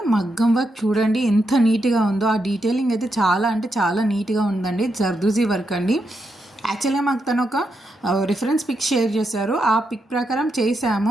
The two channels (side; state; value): both; normal; correlation 0.83